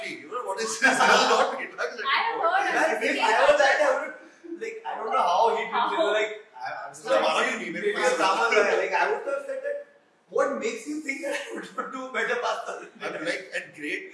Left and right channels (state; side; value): identical; both; correlation 1.00